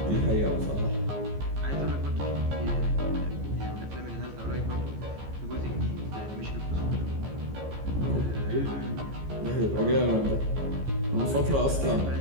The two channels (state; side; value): late; left; 15 ms